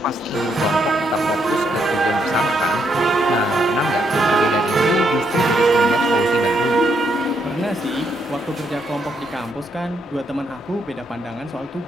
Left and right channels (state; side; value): normal; both; correlation 0.76